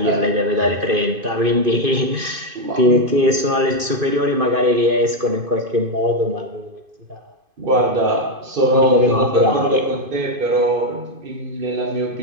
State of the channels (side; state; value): left; late; 2.5 ms